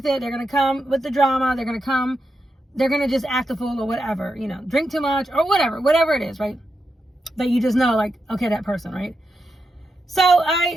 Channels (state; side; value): normal; both; correlation 0.87